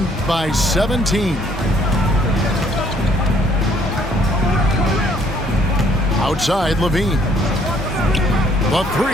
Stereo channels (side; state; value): both; normal; correlation 0.64